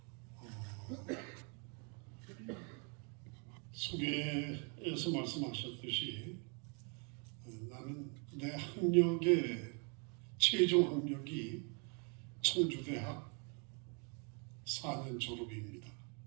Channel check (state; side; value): quieter; left; 36.0 dB